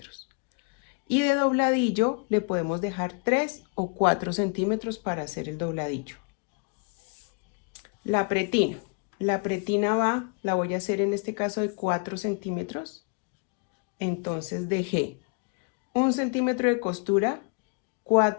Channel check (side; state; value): right; quieter; 35.3 dB